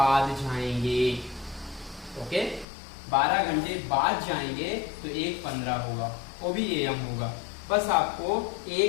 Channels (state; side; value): drops out; right; at 2.7 s